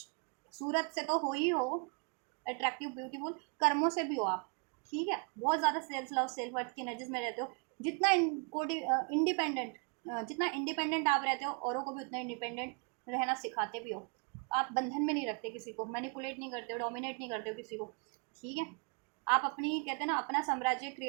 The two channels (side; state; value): left; quieter; 36.4 dB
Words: सूरत से तो हो ही हो अट्रैक्टिव ब्यूटीफुल, कर्मों से भी हो आप, ठीक है, बहुत ज़्यादा सेल्फ लव सेल्फ वर्थ की एनर्जीज में रहते हो, जितना इंडिपेंडेंट, जितना इंडिपेंडेंट आप रहते हो औरों को भी उतना इंडिपेंडेंट रहना सिखाते भी हो, आप बंधन में नहीं रखते किसी को, मैनिपुलेट नहीं करते हो, डोमिनेट नहीं करते हो किसी को, ठीक है, आप अपनी कहते हैं ना अपना साम्राज्य